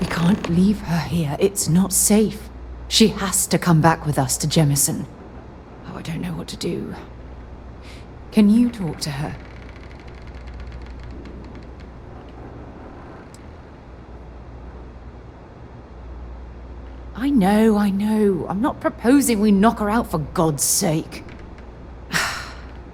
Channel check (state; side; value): identical; both; correlation 1.00